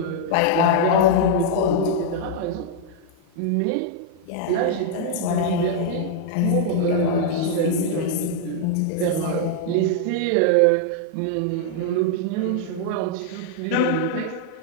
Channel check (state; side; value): different; both; correlation -0.01